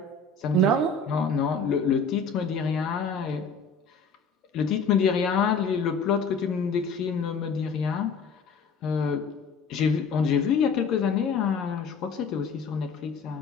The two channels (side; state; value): right; quieter; 4.3 dB